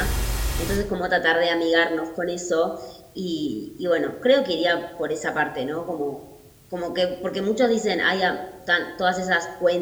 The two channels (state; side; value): identical; both; correlation 1.00